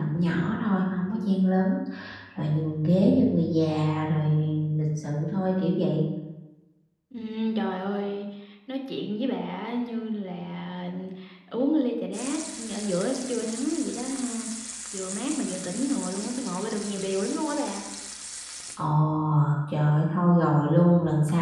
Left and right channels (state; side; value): identical; both; correlation 1.00